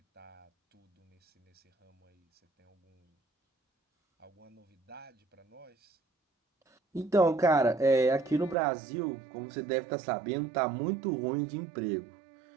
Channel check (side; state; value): left; drops out; at 8.6 s